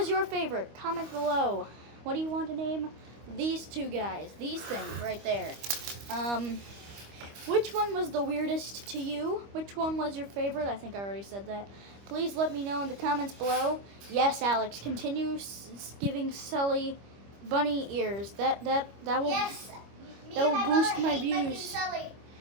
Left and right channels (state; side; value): late; left; 25 ms